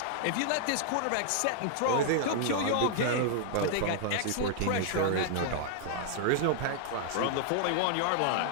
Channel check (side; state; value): both; different; correlation 0.00